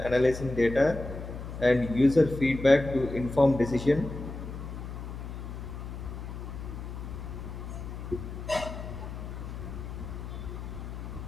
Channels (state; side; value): noise; left; hum, 8 dB below the sound